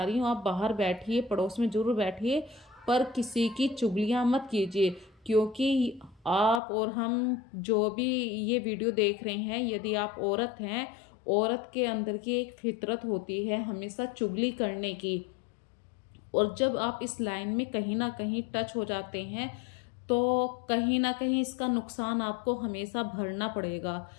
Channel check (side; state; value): right; drops out; at 6.6 s